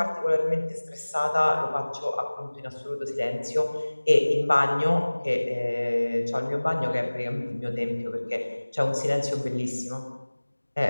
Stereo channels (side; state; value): both; inverted; correlation -1.00